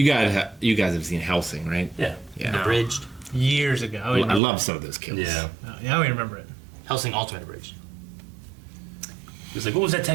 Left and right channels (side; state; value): left; drops out; at 4.4 s